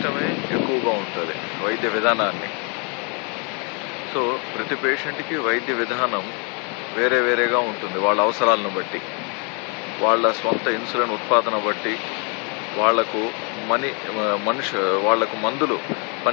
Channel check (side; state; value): right; quieter; 35.4 dB